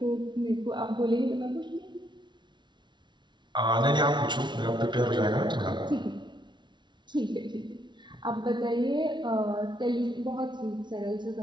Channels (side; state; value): left; late; 0.22 ms